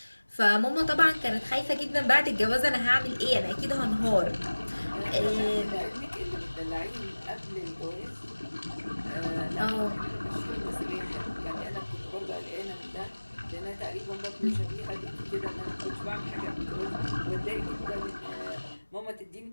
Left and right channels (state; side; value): inverted; both; correlation -1.00